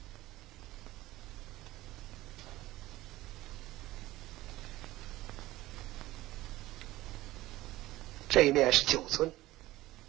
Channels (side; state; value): left; quieter; 17.2 dB